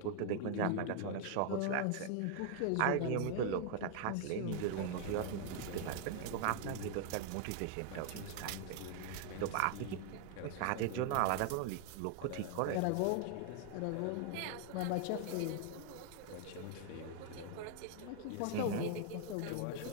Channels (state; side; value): different; both; correlation 0.00